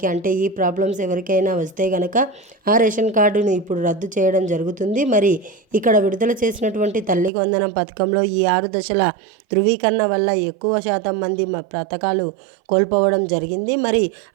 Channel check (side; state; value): left; drops out; at 7.3 s